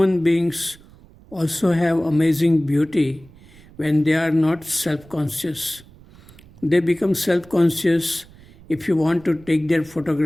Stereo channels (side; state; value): right; noise; rumble, 24 dB below the sound